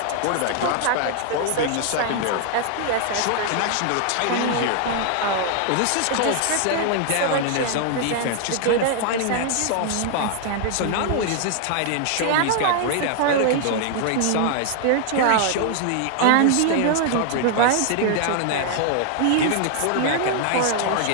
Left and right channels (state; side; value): different; both; correlation 0.00